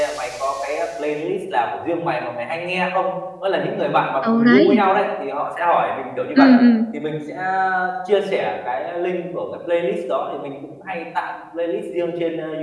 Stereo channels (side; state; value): both; identical; correlation 1.00